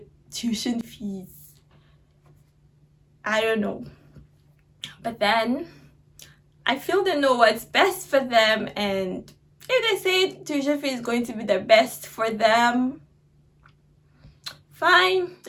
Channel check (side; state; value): both; identical; correlation 1.00